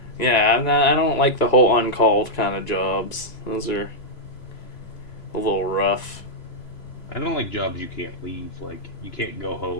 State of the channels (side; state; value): right; late; 2.9 ms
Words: Yeah, I don't like the whole uncalled kind of jobs. Those are a little rough. I don't like jobs you can't leave. Like you can't go